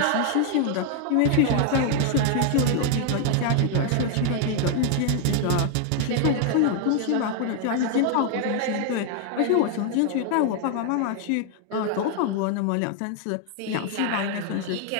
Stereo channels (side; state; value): both; different; correlation 0.00